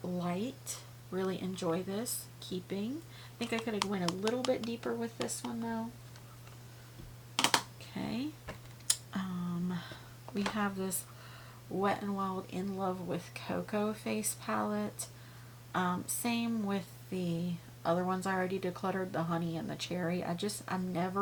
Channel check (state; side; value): identical; both; correlation 1.00